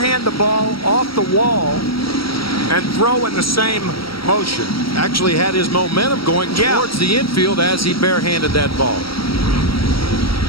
the ball off the wall and throw in the same motion. Actually had his momentum going towards the infield as he barehanded that ball.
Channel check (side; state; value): right; late; 0.75 ms